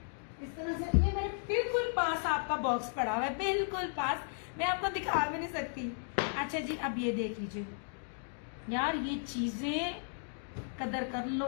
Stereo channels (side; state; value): right; silent; digital silence